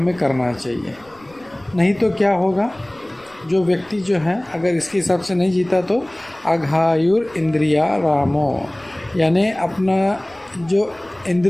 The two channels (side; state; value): left; noise; rumble, 29 dB below the sound